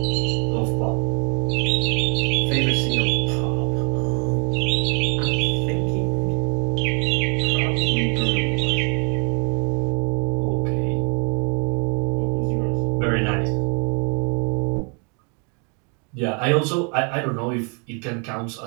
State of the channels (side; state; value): left; quieter; 36.6 dB